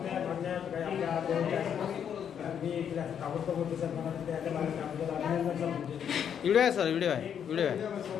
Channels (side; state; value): right; quieter; 8.4 dB